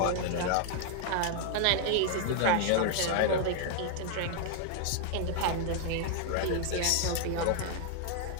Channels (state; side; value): different; both; correlation 0.00